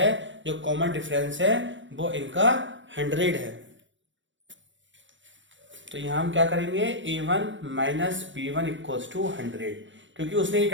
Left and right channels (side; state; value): left; late; 0.55 ms